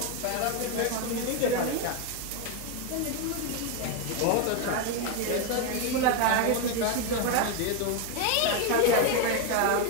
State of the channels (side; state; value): both; different; correlation 0.01